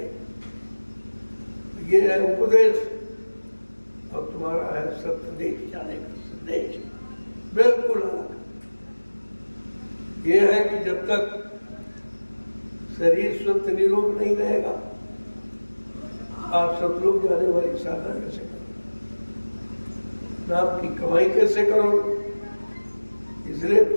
ये है उपदेश, और तुम्हारा है सत्य जाने का संदेश, बिल्कुल अलग। ये है कि जब तक शरीर स्वस्थ निरोग नहीं रहेगा, आप सब लोग जाने वाली साधना कैसे करो, नाम की कमाई कैसे करो। इसलिए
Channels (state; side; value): inverted; both; correlation -1.00